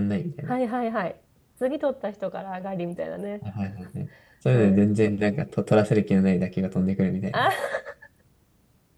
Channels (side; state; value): both; identical; correlation 1.00